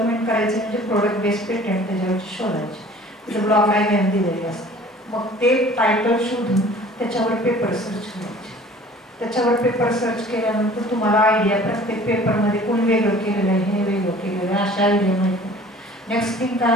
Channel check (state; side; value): normal; both; correlation 0.48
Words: करायचे म्हणजे प्रोडक्ट बेस पेटंट त्याच्यावरची शोधायचे. तिथं ब्लॉक डायग्राम दिलेली असते. मग ते टायटल शोधून त्याच्यावर पेपर सर्च करायचे. त्याच्यावर पेपर सर्च केल्यानंतर तुम्हाला आयडिया प्रत्येक पेपरमध्ये कोण वेगळं केलेलं आहे, हे वेगळं केलेलं आहे, अशा आयडिया माहिती. नेक्स्ट